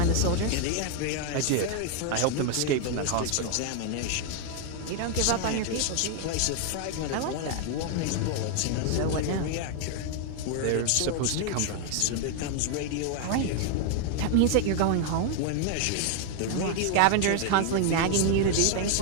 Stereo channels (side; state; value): both; different; correlation 0.00